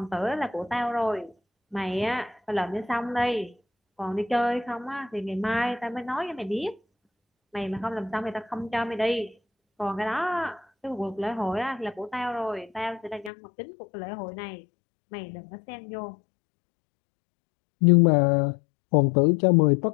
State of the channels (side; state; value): right; drops out; at 13.3 s